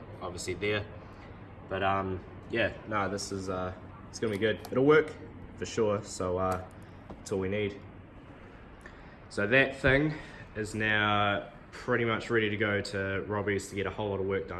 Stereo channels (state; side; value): identical; both; correlation 1.00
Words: obviously there. But yeah, no, this is it's gonna be good. It'll work for sure, so that's all we need. So that thing is now pretty much ready to go to Robbie's to get a whole lot of work